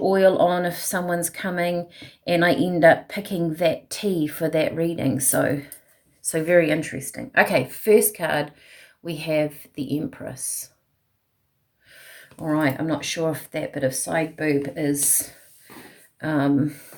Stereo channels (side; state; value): both; identical; correlation 1.00